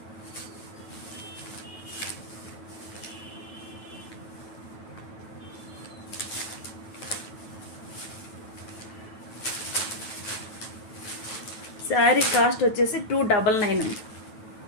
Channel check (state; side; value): late; right; 9.2 ms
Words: శారీ కాస్ట్ వచ్చేసి 299.